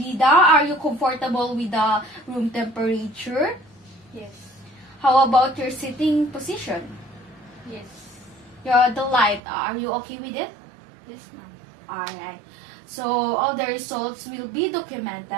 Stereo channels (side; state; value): left; drops out; at 9.4 s